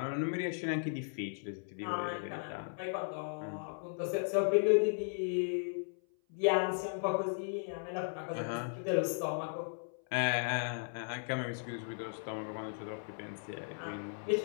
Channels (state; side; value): silent; right; 54 dB below the other